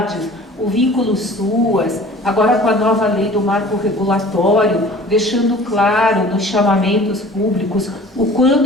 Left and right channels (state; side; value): normal; both; correlation 0.46